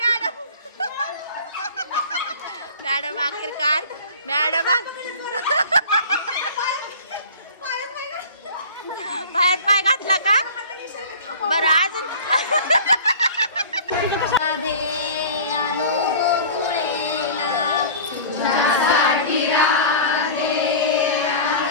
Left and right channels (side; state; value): both; inverted; correlation -0.40